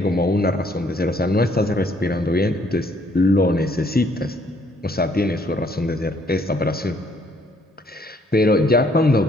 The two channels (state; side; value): normal; both; correlation 0.65